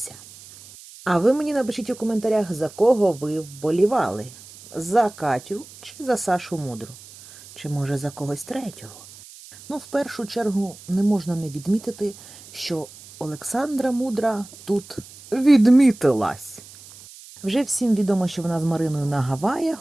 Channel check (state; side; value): noise; right; hiss, 19 dB below the sound